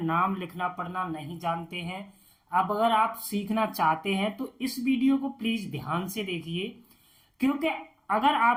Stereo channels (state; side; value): identical; both; correlation 1.00